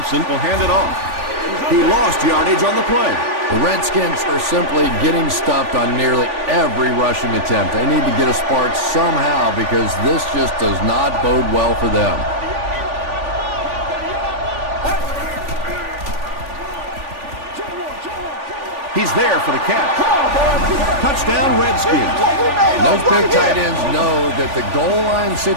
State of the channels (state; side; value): late; left; 3.4 ms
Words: will hand it off. He lost yardage on the play. The Redskins are simply getting stuffed on nearly every rushing attempt. They need to get a spark somehow because this just does not bode well for them. He's there for the catch. Touchdown, Redskins. Those big tight ends know that the goal line